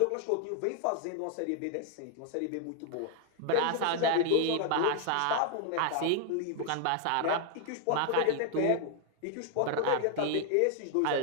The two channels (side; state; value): both; different; correlation 0.00